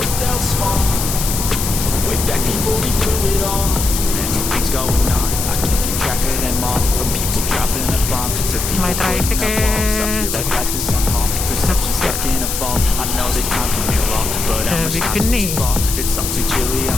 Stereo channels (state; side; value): noise; left; hiss, 3 dB below the sound